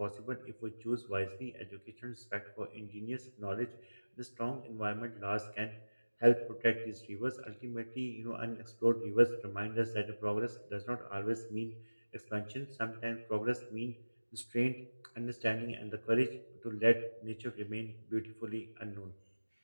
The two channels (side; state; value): both; inverted; correlation -1.00